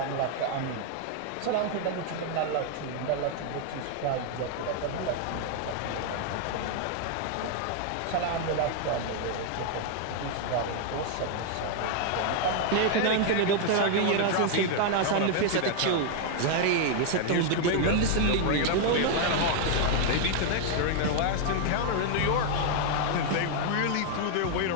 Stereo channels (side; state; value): both; different; correlation 0.00